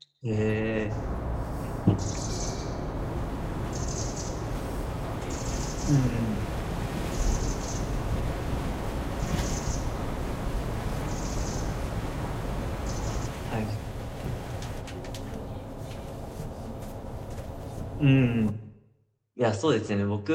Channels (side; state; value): both; identical; correlation 1.00